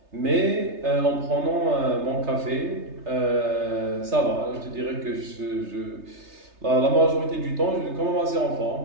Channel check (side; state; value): left; late; 3.3 ms